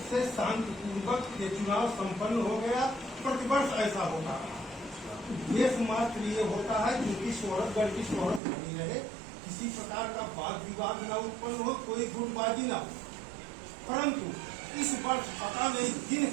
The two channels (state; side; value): drops out; left; at 8.4 s